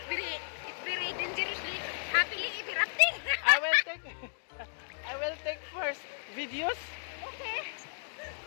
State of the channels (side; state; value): right; silent; digital silence